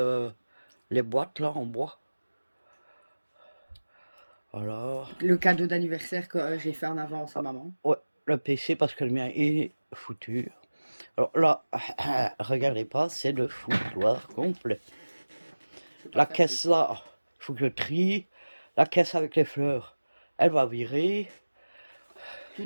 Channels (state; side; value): inverted; both; correlation -1.00